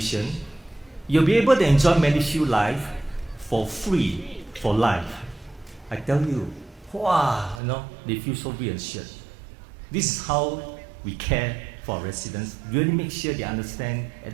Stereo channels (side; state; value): left; drops out; at 7.6 s